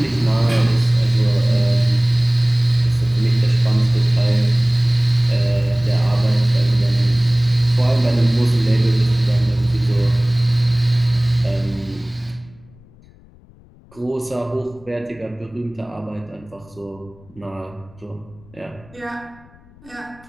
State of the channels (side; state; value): left; noise; rumble, 26 dB below the sound